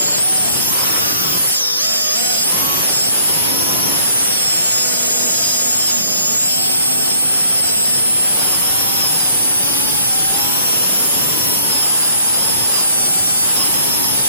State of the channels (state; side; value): inverted; both; correlation -0.58